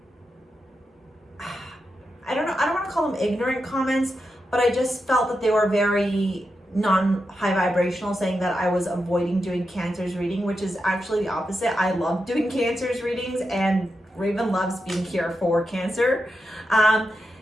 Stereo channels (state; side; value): normal; both; correlation 0.87